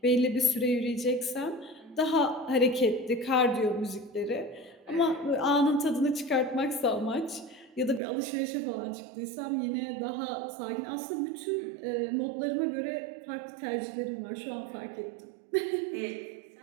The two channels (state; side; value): drops out; left; at 8.0 s